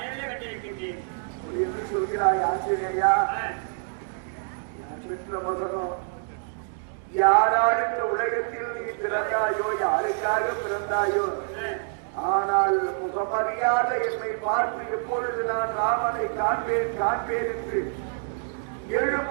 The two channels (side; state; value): left; silent; digital silence